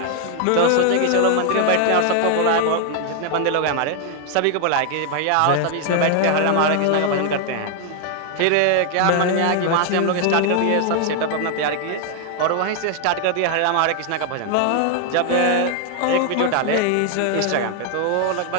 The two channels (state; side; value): different; both; correlation 0.00